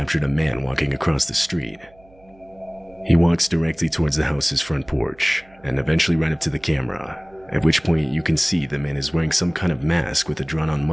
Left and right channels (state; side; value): noise; right; hum, 28 dB below the sound